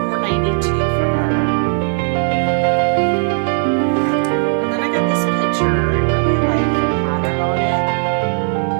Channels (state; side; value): silent; left; digital silence